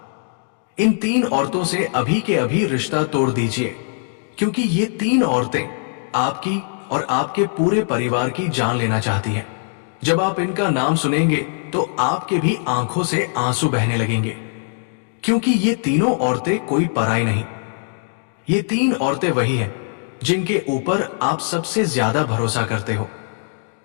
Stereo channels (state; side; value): silent; right; 65 dB below the other